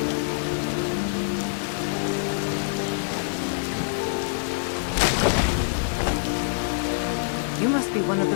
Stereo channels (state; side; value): silent; right; digital silence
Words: You must be one of